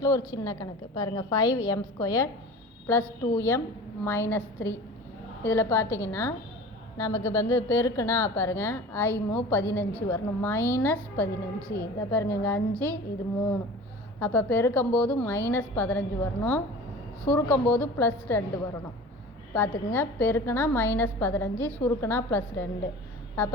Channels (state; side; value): normal; both; correlation 0.38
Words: ஒரு சின்ன கணக்கு பாருங்கள். 5m² + 2m - 3. இதில் பார்த்தீங்கன்னா நமக்கு பெருக்குனா பாருங்கள் i-15 வரணும். -15 இதை பாருங்கள், இங்கே 5 இது 3. அப்போ பெருக்கும்போது -15 வரணும், சுருக்கும்போது +2 வரணும். பார்த்துக்குங்க, பெருக்குனா -15, சுருக்குனா +2.